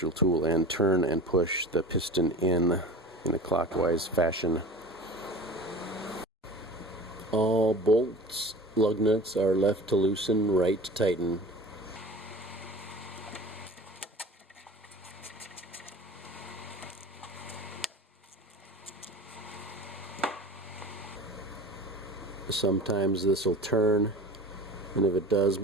tool and turn and push the piston in a clockwise fashion. All bolts, lug nuts are left to loosen, right to tighten. Sometimes this will turn, and if it does,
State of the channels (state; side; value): normal; both; correlation 0.37